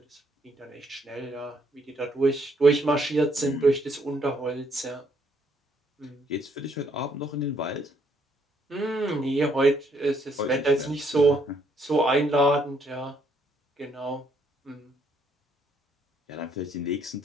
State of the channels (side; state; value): both; normal; correlation 0.70